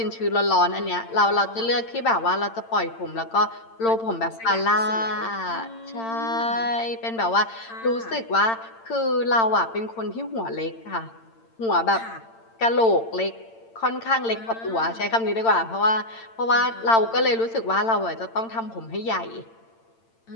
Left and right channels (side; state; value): right; late; 8.8 ms